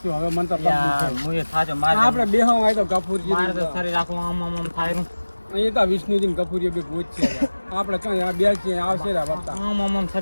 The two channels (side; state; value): both; inverted; correlation -1.00